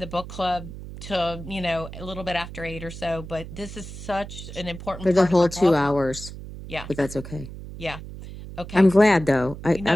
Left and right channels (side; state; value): right; noise; hum, 12 dB below the sound